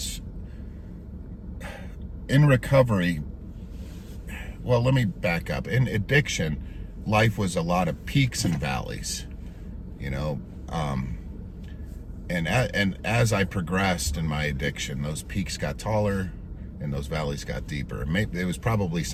in recovery, well, let me back up. In addiction, life was a lot of peaks and valleys, and as I progressed in my addiction, those peaks got taller and those valleys got deeper. Maybe it was probably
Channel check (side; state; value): both; identical; correlation 1.00